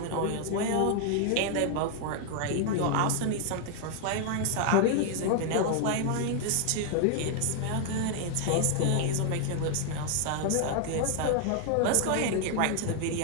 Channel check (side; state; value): both; different; correlation 0.00